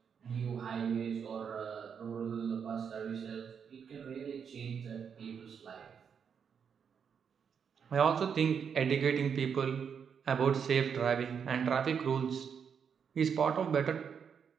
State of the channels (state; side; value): quieter; left; 7.0 dB